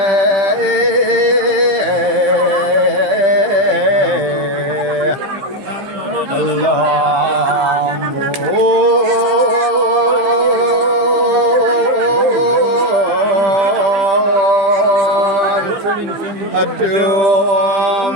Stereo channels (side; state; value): left; late; 15 ms